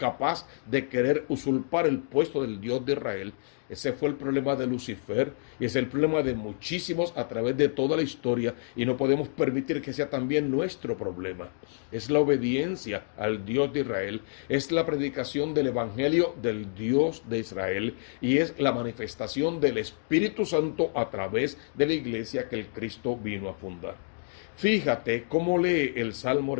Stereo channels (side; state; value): right; silent; digital silence